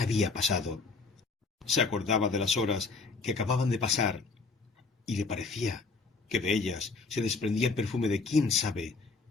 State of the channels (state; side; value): quieter; right; 4.1 dB